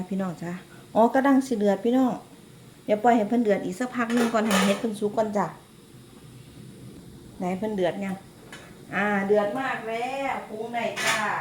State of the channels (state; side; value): identical; both; correlation 1.00